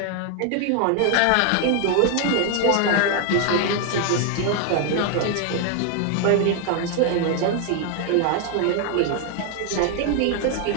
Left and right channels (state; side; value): different; both; correlation 0.00